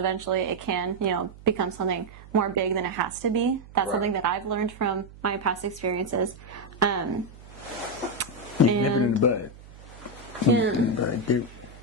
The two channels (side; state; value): right; noise; hum, 19 dB below the sound